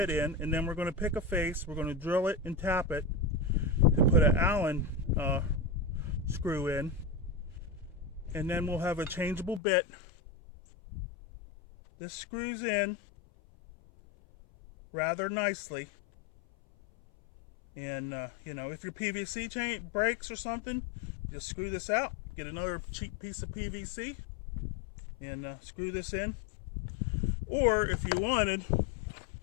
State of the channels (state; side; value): drops out; right; at 9.6 s